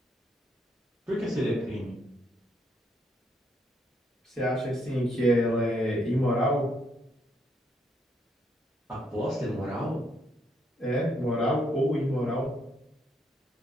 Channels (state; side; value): normal; both; correlation 0.73